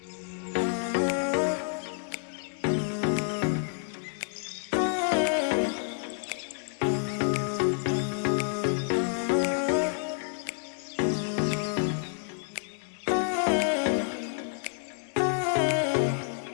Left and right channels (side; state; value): right; silent; 59 dB below the other